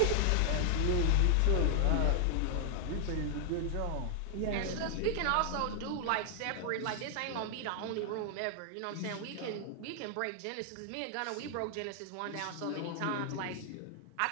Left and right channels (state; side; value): different; both; correlation 0.00